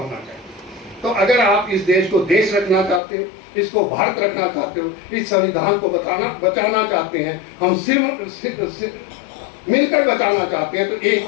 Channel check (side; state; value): right; drops out; at 3.0 s